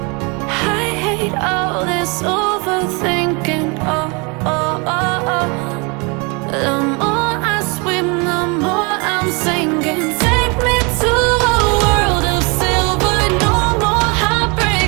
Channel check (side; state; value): left; quieter; 30.5 dB